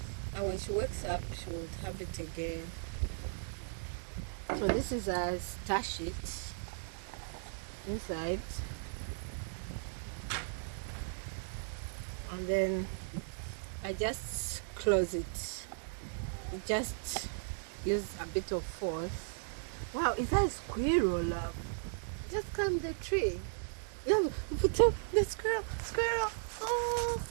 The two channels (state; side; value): silent; left; digital silence